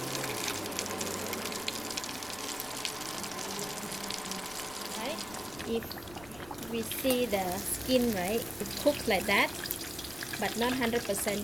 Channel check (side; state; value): left; noise; rumble, 19 dB below the sound